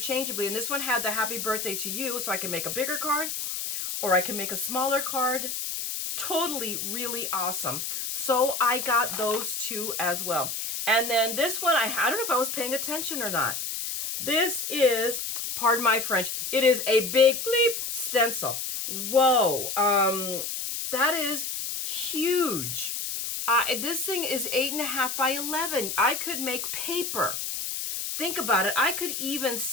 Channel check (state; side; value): noise; left; hiss, 4 dB below the sound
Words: And this one had the happy birthday to you, so I can make a bigger card or I can make a smaller card. Totally, really awesome. So I got those two as well. And then this one, I don't know if I was paying attention or not. This is, pardon my French, it is a big bleep stencil. Whoa, that is huge. This thing is 8.5 by 11. I could make paper. Think about it. I could even